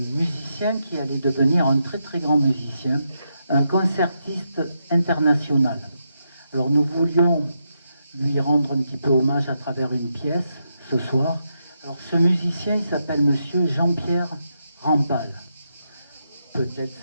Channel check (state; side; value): inverted; both; correlation -0.83